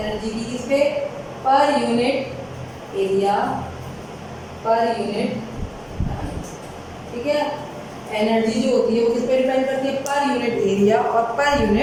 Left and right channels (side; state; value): both; identical; correlation 1.00